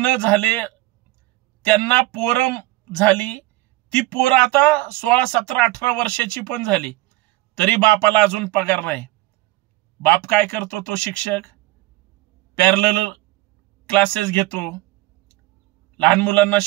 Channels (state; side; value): quieter; left; 18.8 dB